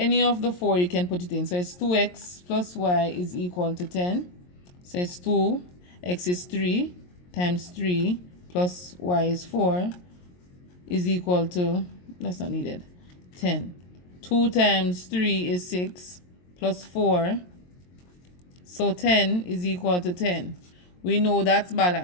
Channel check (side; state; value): right; late; 22 ms